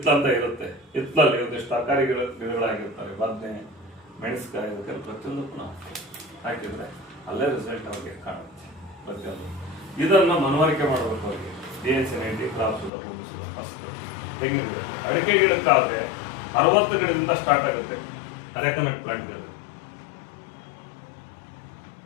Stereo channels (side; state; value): right; drops out; at 12.9 s